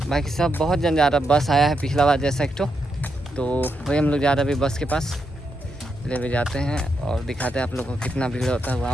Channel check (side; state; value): both; normal; correlation 0.82